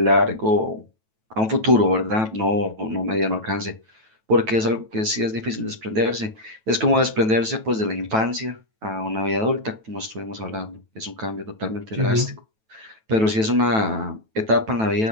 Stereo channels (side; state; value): left; late; 9.2 ms